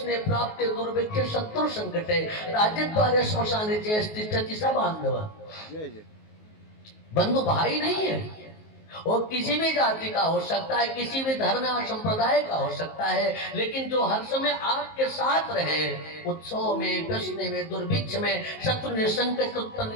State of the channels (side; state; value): right; late; 19 ms